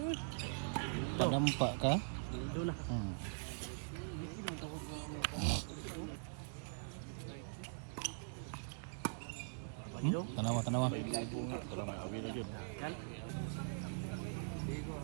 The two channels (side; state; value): left; silent; digital silence